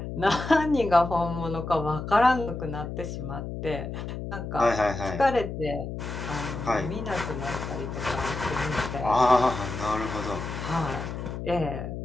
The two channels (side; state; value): left; noise; hum, 6 dB below the sound